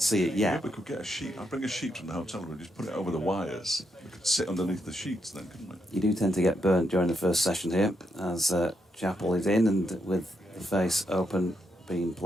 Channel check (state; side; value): normal; both; correlation 0.80